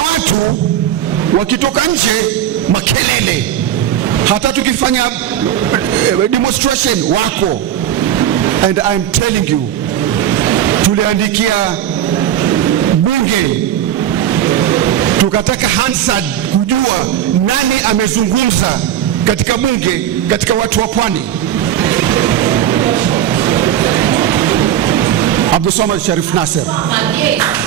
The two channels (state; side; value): quieter; left; 10.6 dB